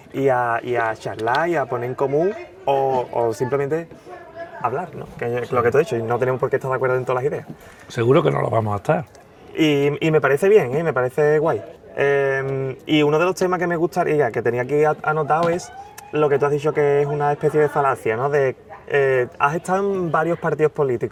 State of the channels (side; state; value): both; identical; correlation 1.00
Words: y a charlar y a poner en común o simplemente hablar, ¿no? Que es lo que tú has dicho, y no tenemos por qué estar de acuerdo en todas las ideas. Seguro que no lo vamos a estar. Y me parece bien, me parece guay. Y uno de los temas que me gustaría, que tenía aquí anotado, es lo que tú has dicho, que es una especie de falacia, ¿no? Has estado en varios partidos